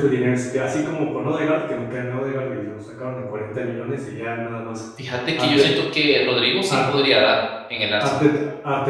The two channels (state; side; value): identical; both; correlation 1.00